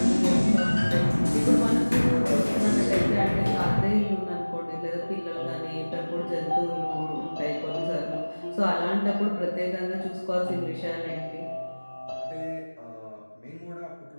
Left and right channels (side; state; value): both; inverted; correlation -1.00